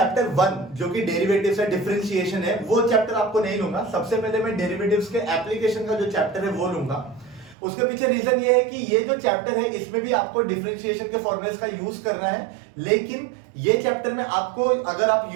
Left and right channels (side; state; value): left; drops out; at 7.6 s